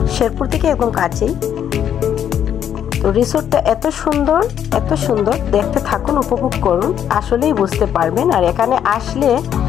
শেরপুর থেকে একদম কাছেই। তো রিসোর্টটা এত সুন্দর, দেখতে থাকুন, উপভোগ করুন, আসলেই বুঝতে পারবেন। আর এখানে আসলে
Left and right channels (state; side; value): quieter; right; 9.4 dB